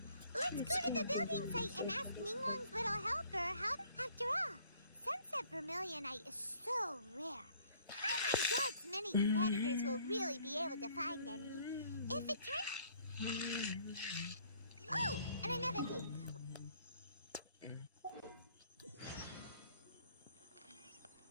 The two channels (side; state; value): both; inverted; correlation -0.60